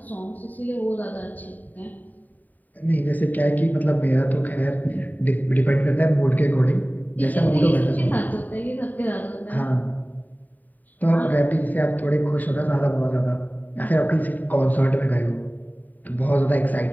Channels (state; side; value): late; right; 0.084 ms